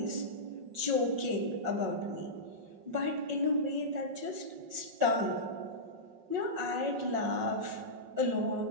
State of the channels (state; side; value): late; left; 5.5 ms